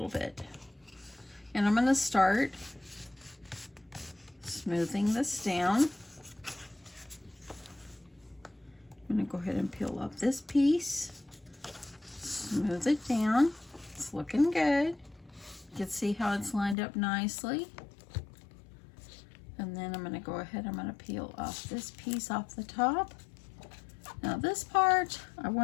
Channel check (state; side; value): drops out; right; at 16.8 s